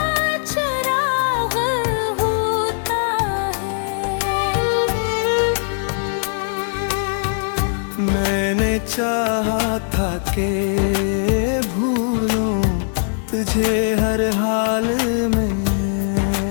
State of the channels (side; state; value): right; silent; 66 dB below the other